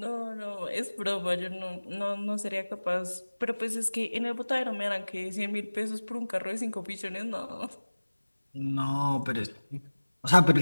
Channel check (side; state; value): both; inverted; correlation -1.00